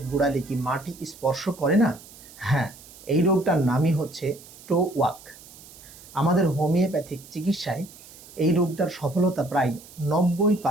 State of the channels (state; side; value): noise; right; hiss, 20 dB below the sound